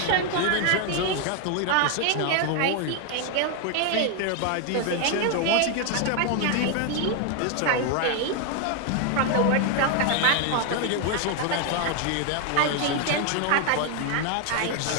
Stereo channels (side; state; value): both; different; correlation 0.01